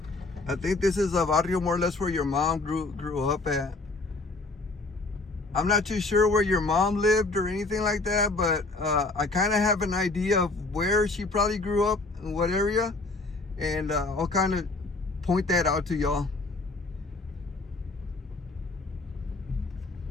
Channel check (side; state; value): right; quieter; 3.3 dB